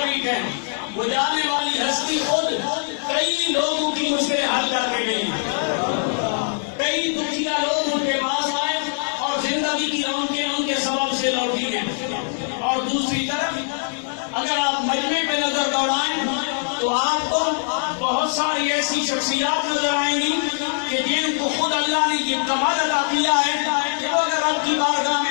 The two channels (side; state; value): right; silent; 62 dB below the other